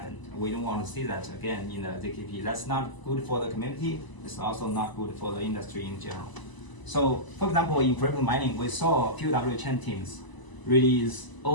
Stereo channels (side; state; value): right; late; 1.0 ms